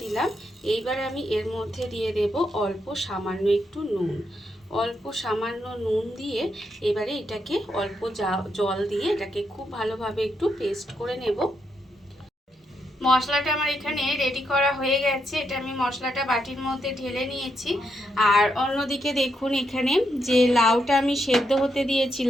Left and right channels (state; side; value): normal; both; correlation 0.81